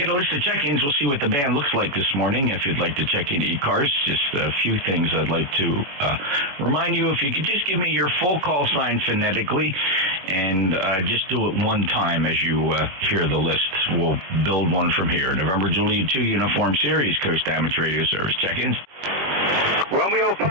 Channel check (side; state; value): left; late; 21 ms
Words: a list of check-ins. We'll see what the band looks like this morning. If you'd like to check in ECARS, just a few things I'd like to remind you. If you could just give me your full call sign phonetically, and just do it one time as you hear the list. We'll build one from here. November Juliet 2 Uniform Series, Coast Damage Radio Service. Check-ins. Romeo